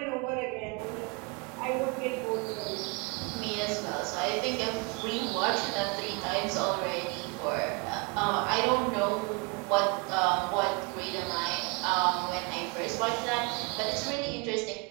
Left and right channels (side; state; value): left; quieter; 30.3 dB